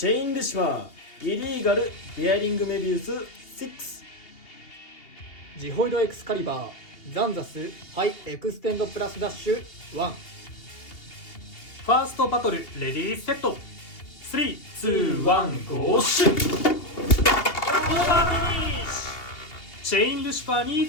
ェインルシファー、イリーガル、ベアリングメビウス6。ジホイドエクスカリバー、ザンザス、ハイエクステンドプラスダッシュ1。ファーストバトル、レディーセット。3、2、1、ゴーシュッ。オーバーフィニッシュ。チェインルシファーに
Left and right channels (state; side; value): late; right; 2.8 ms